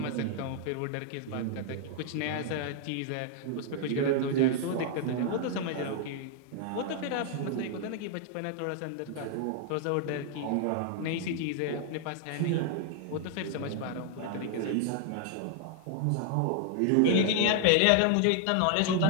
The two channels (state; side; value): different; both; correlation -0.01